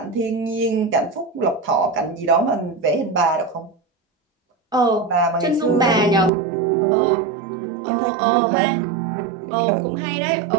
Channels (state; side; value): drops out; left; at 6.3 s